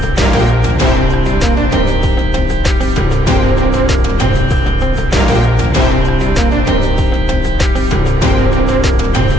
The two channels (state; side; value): normal; both; correlation 0.71